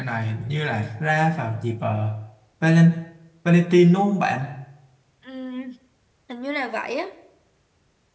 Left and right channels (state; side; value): identical; both; correlation 1.00